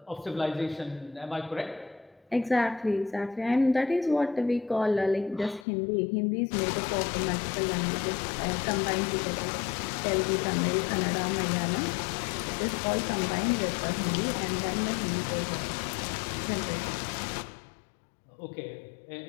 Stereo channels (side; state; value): right; drops out; at 5.7 s